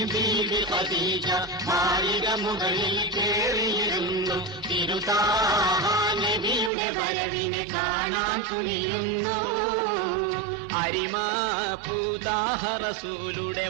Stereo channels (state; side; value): drops out; left; at 6.7 s